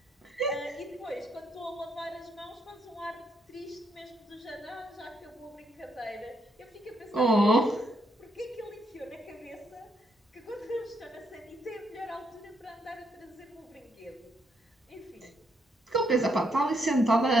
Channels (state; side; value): normal; both; correlation 0.76